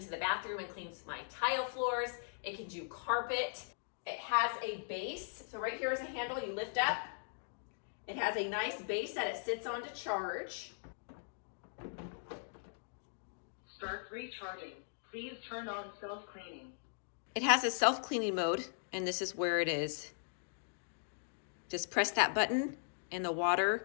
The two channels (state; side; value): silent; right; digital silence